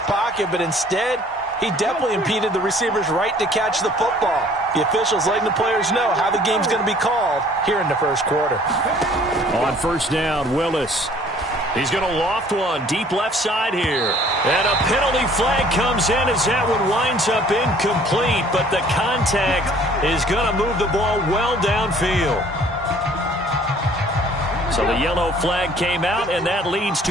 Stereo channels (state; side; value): normal; both; correlation 0.55